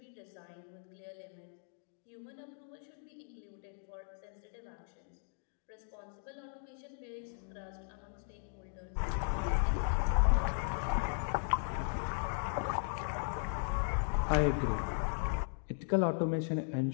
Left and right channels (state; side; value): silent; right; digital silence